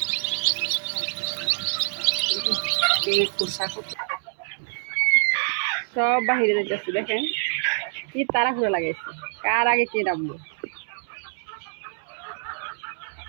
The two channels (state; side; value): silent; left; 61 dB below the other